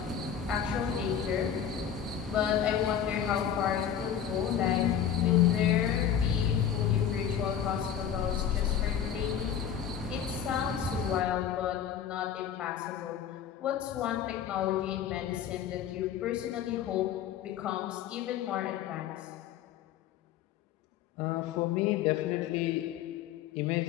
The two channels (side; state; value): right; quieter; 8.9 dB